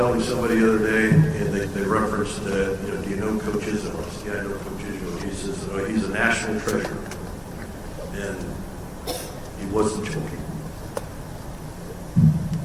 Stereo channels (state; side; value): identical; both; correlation 1.00